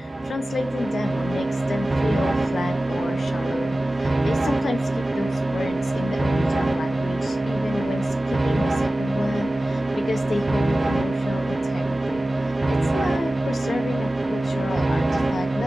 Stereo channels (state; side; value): normal; both; correlation 0.96